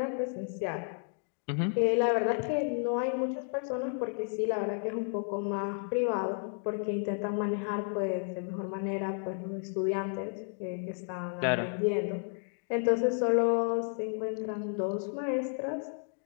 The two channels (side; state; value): right; silent; 56 dB below the other